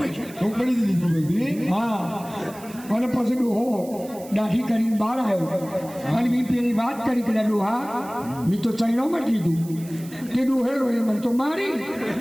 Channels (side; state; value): right; noise; hiss, 19 dB below the sound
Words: ચોપડી દીધી બધી. હા અને પછી ડોહો દાઢી કરીને બહાર આવ્યો અને મેં પેલી વાત કરી કે ડોહા મેં તો ચાઇનામાં જ લીધું તે ડોહે રોયો મને તો મારી